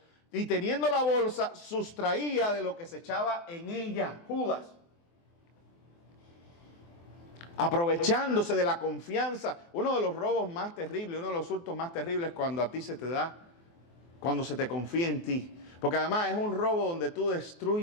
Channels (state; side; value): late; right; 24 ms